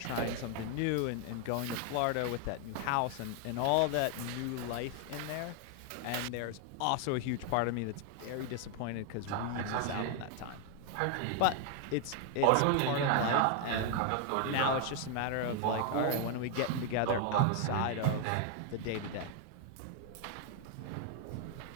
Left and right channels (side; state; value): both; different; correlation 0.00